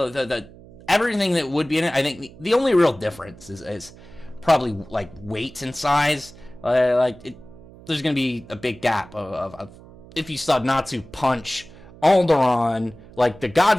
everything that would be in it. I think the only real difference is probably like weight and size. There's going to be a big gap of if you saw Natsu punch Alderaan, like the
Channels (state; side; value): noise; right; hum, 21 dB below the sound